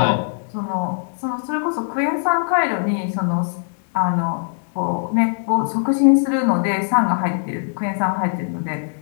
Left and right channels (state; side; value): silent; right; digital silence